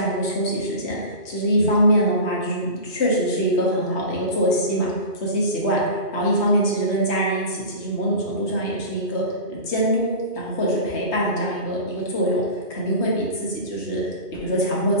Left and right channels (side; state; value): right; late; 2.4 ms